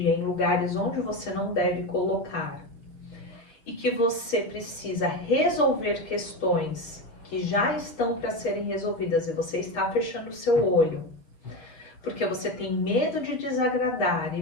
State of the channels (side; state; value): right; late; 6.7 ms